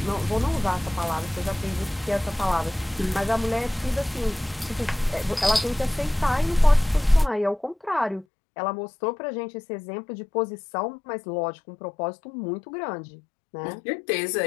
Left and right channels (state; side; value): drops out; right; at 8.2 s